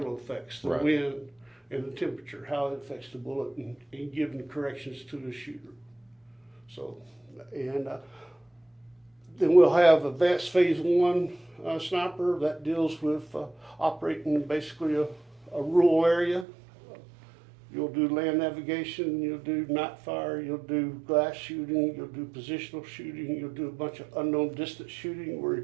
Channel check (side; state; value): left; drops out; at 16.4 s